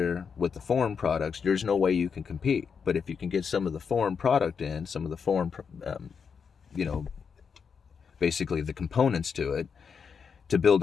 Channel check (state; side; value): quieter; right; 6.3 dB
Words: with the foreign products, there's no way you can compete. But if you can get some of the foreign product in, some of the foreign, you know, basically the components to it, to build